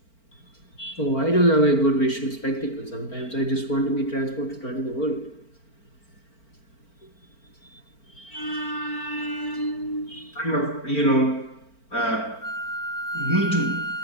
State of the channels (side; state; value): right; late; 4.4 ms